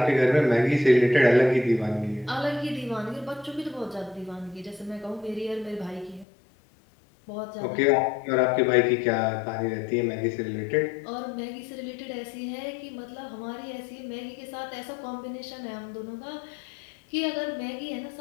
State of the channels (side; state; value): right; drops out; at 6.2 s